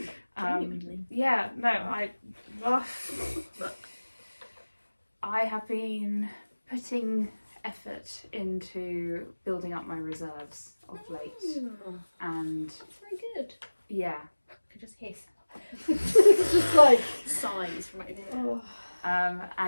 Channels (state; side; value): inverted; both; correlation -1.00